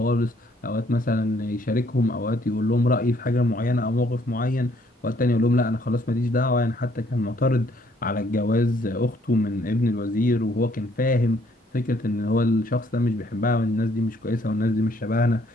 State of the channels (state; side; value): normal; both; correlation 0.65